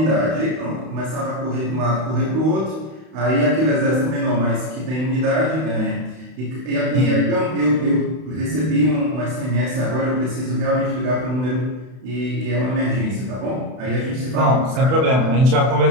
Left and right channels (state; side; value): late; left; 31 ms